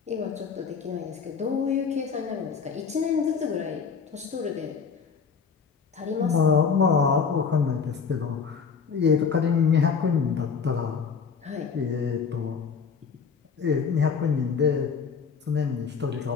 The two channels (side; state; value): right; quieter; 6.0 dB